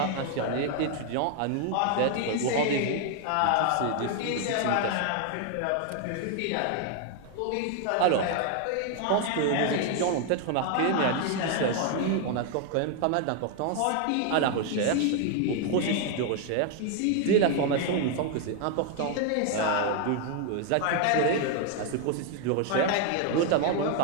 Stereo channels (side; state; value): both; different; correlation 0.00